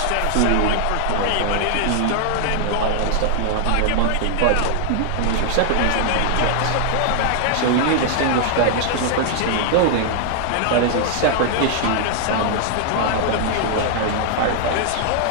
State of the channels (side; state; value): both; different; correlation -0.01